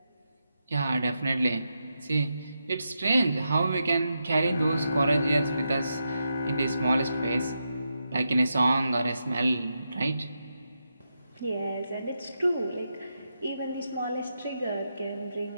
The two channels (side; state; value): both; inverted; correlation -0.85